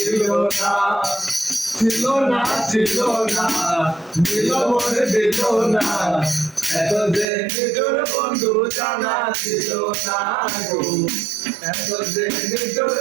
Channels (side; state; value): left; drops out; at 7.2 s